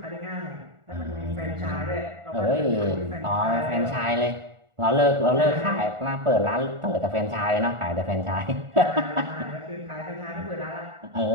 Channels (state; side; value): late; left; 1.4 ms